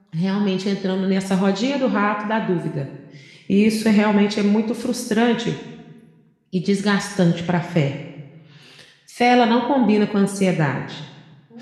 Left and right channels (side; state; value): both; identical; correlation 1.00